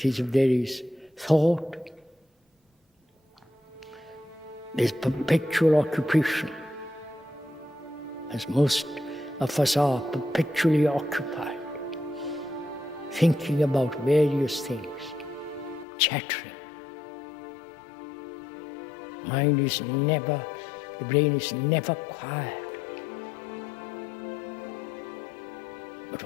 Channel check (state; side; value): drops out; right; at 15.9 s